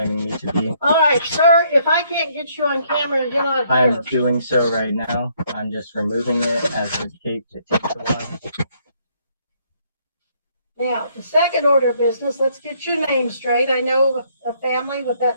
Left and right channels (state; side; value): inverted; both; correlation -0.68